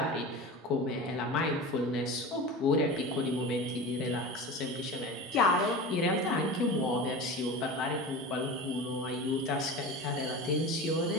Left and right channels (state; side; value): normal; both; correlation 0.31